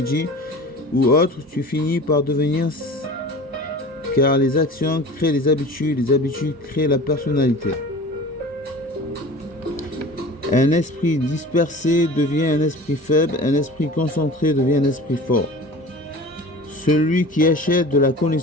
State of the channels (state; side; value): normal; both; correlation 0.39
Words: ou autre, tu finis par devenir, car les actions créent les habitudes créent la personnalité. Un esprit dispersé devient un esprit faible, un esprit concentré devient un esprit fort. Celui qui achète de la